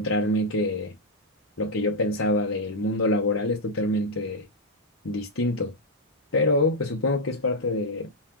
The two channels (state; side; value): normal; both; correlation -0.02